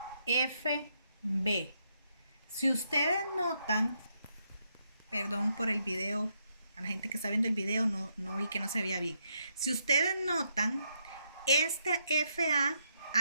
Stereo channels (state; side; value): inverted; both; correlation -0.78